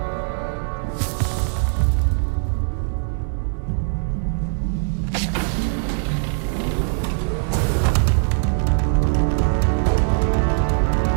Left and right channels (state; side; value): silent; left; 65 dB below the other